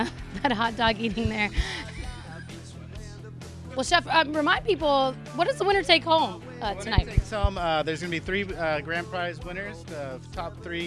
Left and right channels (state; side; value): identical; both; correlation 1.00